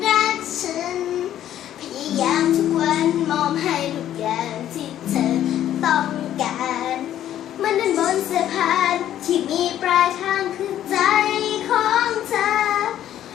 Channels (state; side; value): quieter; right; 11.6 dB